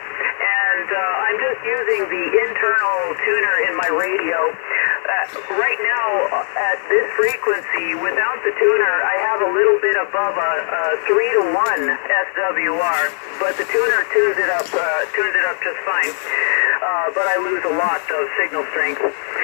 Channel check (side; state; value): right; silent; digital silence